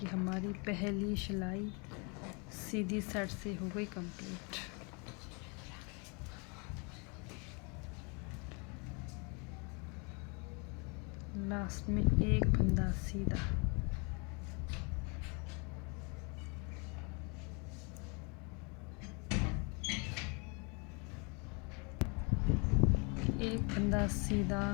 हमारी पहली सिलाई सीधी साइड से हो गई कंप्लीट। लास्ट में एक फंदा सीधा, एक फंदा सीधा,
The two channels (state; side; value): quieter; right; 32.8 dB